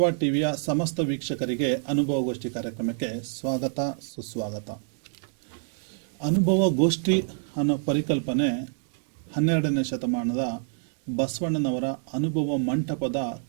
ಟಿವಿಯ ಸಮಸ್ತ ವೀಕ್ಷಕರಿಗೆ ಅನುಭವಗೋಷ್ಠಿ ಕಾರ್ಯಕ್ರಮಕ್ಕೆ ಸ್ವಾಗತ ಸುಸ್ವಾಗತ. ಅನುಭವಗೋಷ್ಠಿ ಅನ್ನೋ ಪರಿಕಲ್ಪನೆ 12ನೇ ಶತಮಾನದ ಬಸವಣ್ಣನವರ ಅನುಭವ ಮಂಟಪದ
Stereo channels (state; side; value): silent; left; digital silence